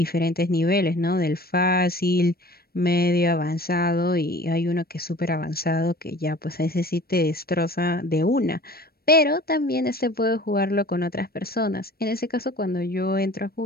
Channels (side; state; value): right; late; 0.44 ms